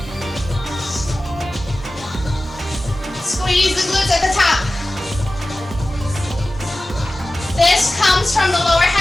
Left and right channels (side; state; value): both; normal; correlation 0.96